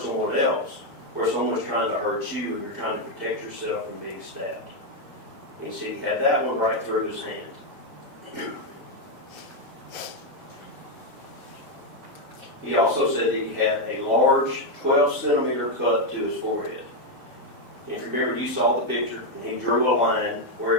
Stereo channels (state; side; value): normal; both; correlation 0.03